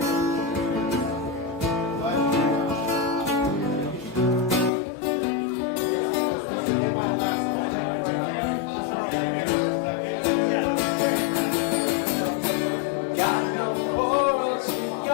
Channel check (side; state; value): right; drops out; at 4.7 s